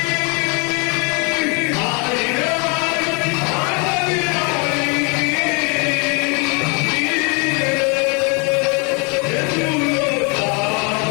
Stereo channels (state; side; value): quieter; right; 33.2 dB